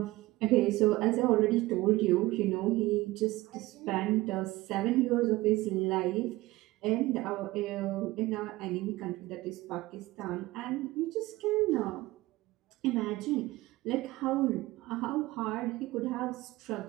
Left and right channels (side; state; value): left; quieter; 19.1 dB